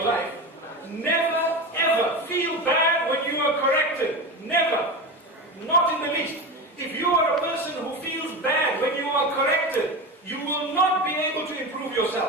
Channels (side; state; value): both; normal; correlation 0.23